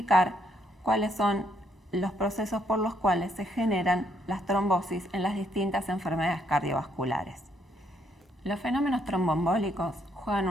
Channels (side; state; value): both; normal; correlation 0.72